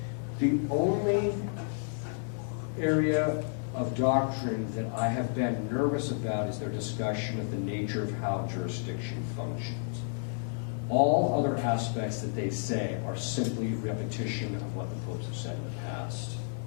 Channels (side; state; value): right; silent; 57 dB below the other